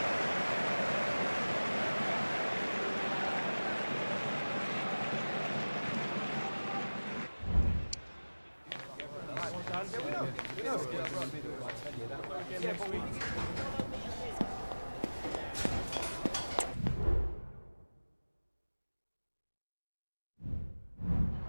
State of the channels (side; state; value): both; inverted; correlation -1.00